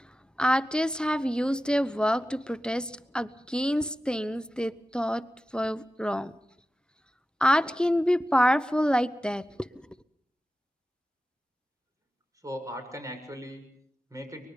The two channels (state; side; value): normal; both; correlation 0.93